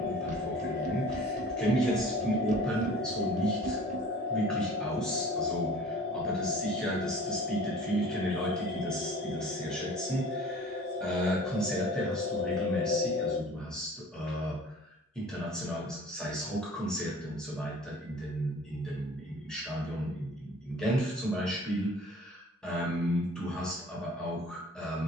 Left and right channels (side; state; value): both; normal; correlation 0.46